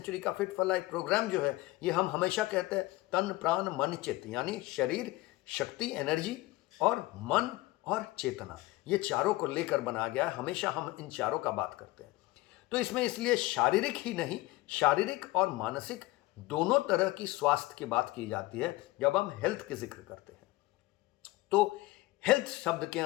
का फिट फॉर लाइफ प्रोग्राम जो है, ये हम हमेशा कहते हैं तन प्राण मन चित्त, यानी शरीर, शक्ति, एनर्जी और मन और चेतना, ये चारों को लेकर बनाया गया है। हमेशा हम इन चारों का बात करते हैं। तो इसमें इसलिए शारीरिक ही नहीं, शारीरिक और मानसिक दोनों तरह की स्वास्थ्य की बात की जाती है जब हम हेल्थ के जिक्र करते हैं। तो हेल्थ शब्द के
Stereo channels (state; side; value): quieter; right; 19.4 dB